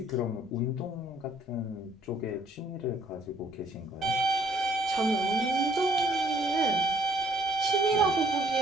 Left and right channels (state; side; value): normal; both; correlation 0.62